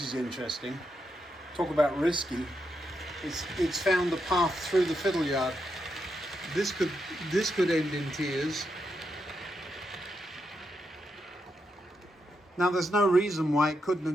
is interesting. Talk about risky. It's found the path through the fiddle yard. This could end in tears. Now there's no reason why it couldn't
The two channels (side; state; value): both; normal; correlation 0.83